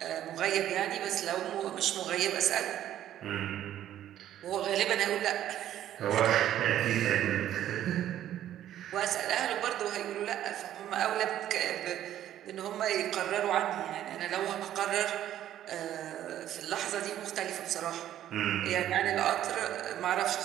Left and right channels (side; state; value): left; quieter; 11.8 dB